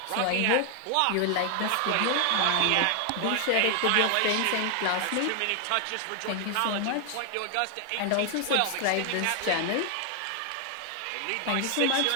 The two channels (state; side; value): different; both; correlation 0.00